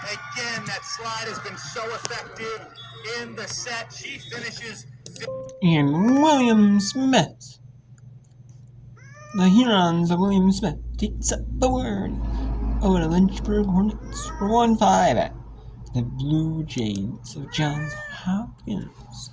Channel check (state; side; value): identical; both; correlation 1.00